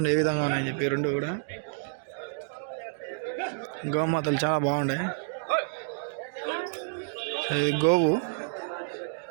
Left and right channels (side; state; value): left; silent; digital silence